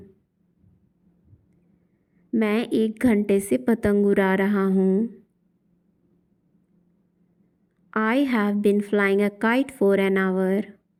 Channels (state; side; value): identical; both; correlation 1.00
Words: मैं 1 घंटे से पतंग उड़ा रहा हूँ। आई हैव बिन फ्लाइंग अ काइट फॉर एन आवर।